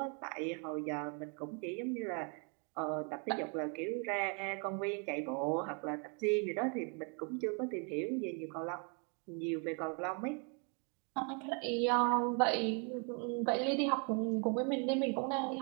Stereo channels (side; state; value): left; quieter; 36.9 dB